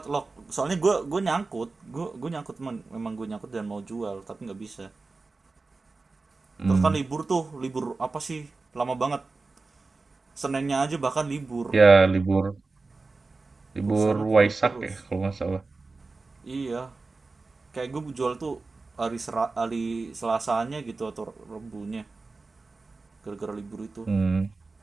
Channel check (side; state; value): left; quieter; 3.8 dB